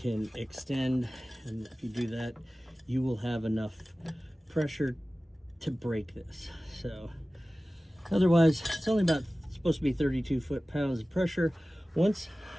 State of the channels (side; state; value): both; normal; correlation 0.97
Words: extend, and if you do that, you will have enough pressure to break this. So otherwise, it's only about supposed to be 32 foot-pounds of pressure. Once